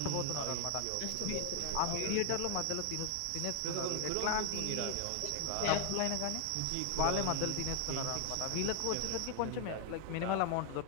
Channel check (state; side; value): different; both; correlation 0.00